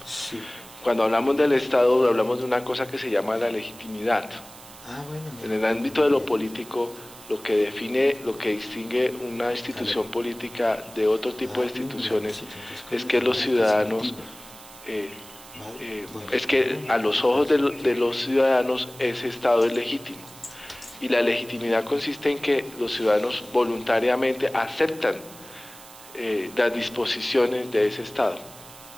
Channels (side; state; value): right; noise; hiss, 19 dB below the sound